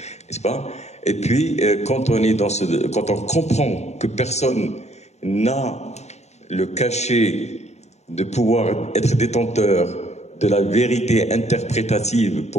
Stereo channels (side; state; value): right; late; 0.32 ms